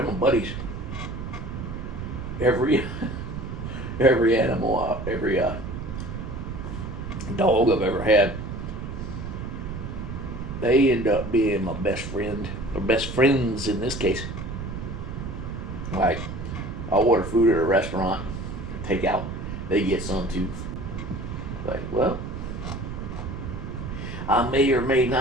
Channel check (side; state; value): right; noise; rumble, 7 dB below the sound